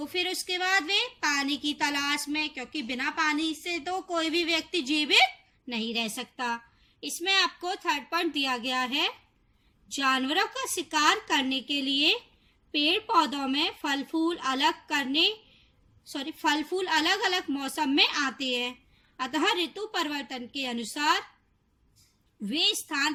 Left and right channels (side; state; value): both; identical; correlation 1.00